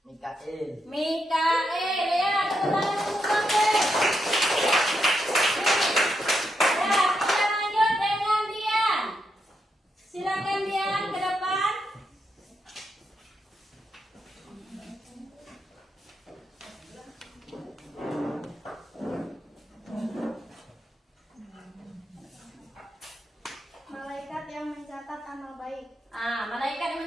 Mikail. Mikael, ya, tepuk tangan untuk Mikael. Ya, kita lanjut dengan Dian. Silakan Dian ke depan. Malaikat yang mencatat amal baik. Ah, malaikat yang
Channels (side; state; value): both; normal; correlation 0.83